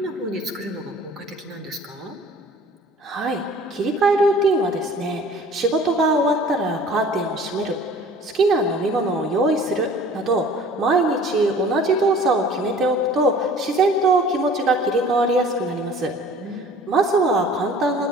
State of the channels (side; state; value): both; normal; correlation 0.48